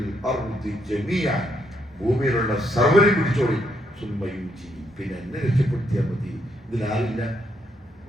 ഭൂമിയിലുള്ള സർവ്വരെയും പിടിച്ചോളി, പിന്നെ എന്നെ രക്ഷപ്പെടുത്തിയാൽ മതി. ഇതിലാരില്ല,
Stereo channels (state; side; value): normal; both; correlation 0.75